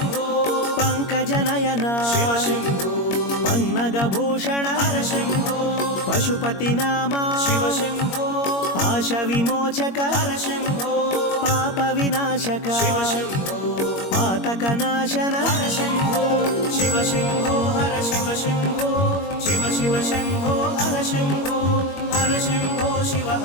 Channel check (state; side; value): late; right; 21 ms